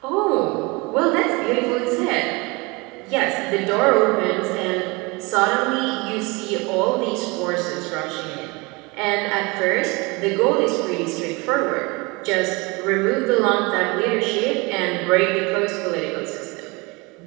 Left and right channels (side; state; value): left; quieter; 26.3 dB